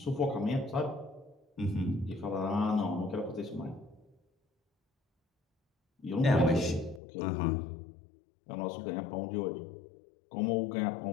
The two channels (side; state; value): right; drops out; at 7.0 s